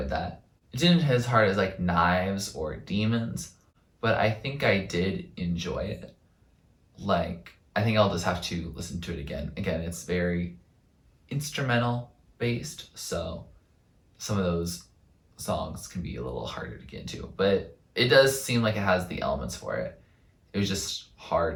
that. It didn't hit as hard as like Knives or Demons, but I think I did enjoy it. Like, I think I'll just have to listen to it again. Again, it's very instrumental based, so some of those songs can be a little harder to get into, but it does seem like it has the elements for it. It was just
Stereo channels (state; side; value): identical; both; correlation 1.00